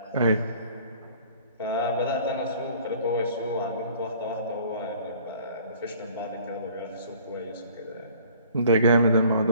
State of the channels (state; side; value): inverted; both; correlation -0.53